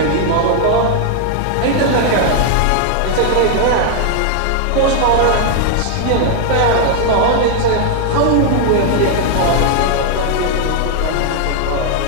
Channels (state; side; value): different; both; correlation 0.00